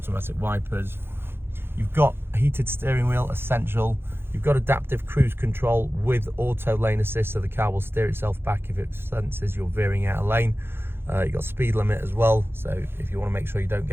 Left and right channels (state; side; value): late; left; 0.11 ms